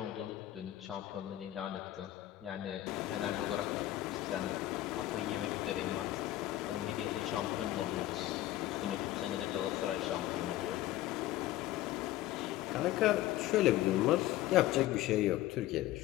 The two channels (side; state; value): right; quieter; 15.0 dB